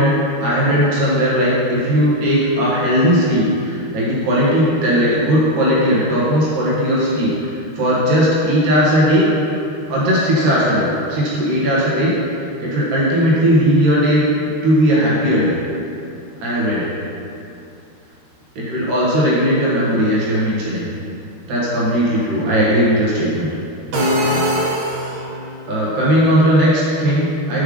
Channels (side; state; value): left; late; 13 ms